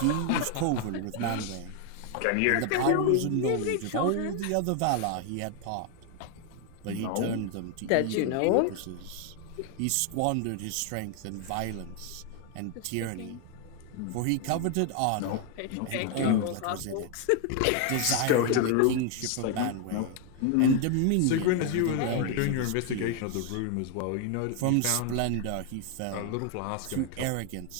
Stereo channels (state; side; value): different; both; correlation 0.00